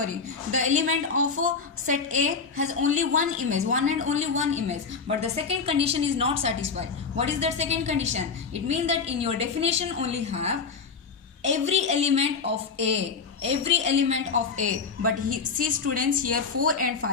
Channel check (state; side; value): quieter; right; 5.2 dB